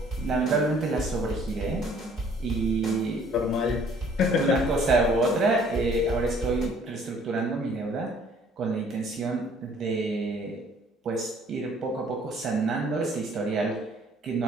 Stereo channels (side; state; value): both; normal; correlation 0.58